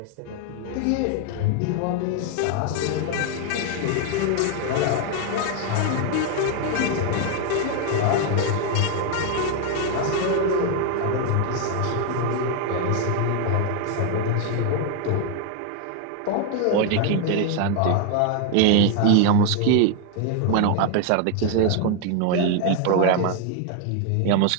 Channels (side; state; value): both; different; correlation 0.00